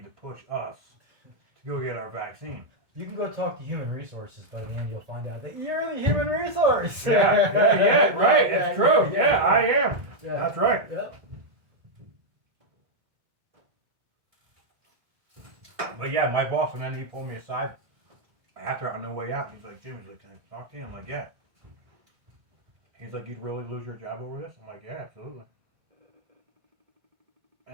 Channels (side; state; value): left; late; 1.7 ms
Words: to push us to go get our vaccine. You can go talk to human resources, but in the end, you'll find out that you're the human resource. Yeah, right. It's true. Yeah, I am. Yeah. That's right. Yep. But yeah, my boss, and then he pulled me aside after on the way out. He's like, Jim, he's like, can I talk to you? I'm like, yeah. He's like, you'd really lose your job over this? I'm like, yeah, absolutely.